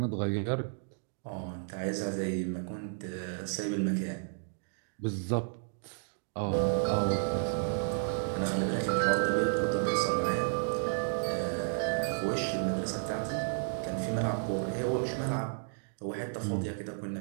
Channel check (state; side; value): silent; left; digital silence